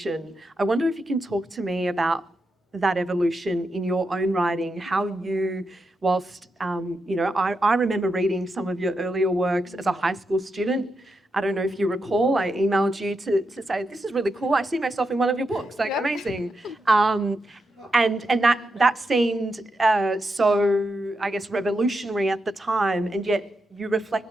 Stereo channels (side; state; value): both; normal; correlation 0.85